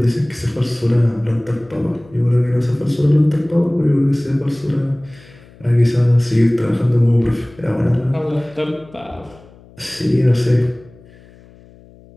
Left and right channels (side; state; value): left; noise; hum, 25 dB below the sound